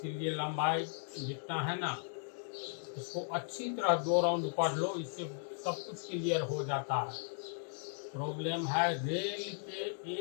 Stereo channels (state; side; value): silent; right; digital silence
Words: लंबाई जितना है ना इसको अच्छी तरह 2 राउंड पढ़ लो, इससे सब कुछ क्लियर हो जाता है। प्रॉब्लम है रेल के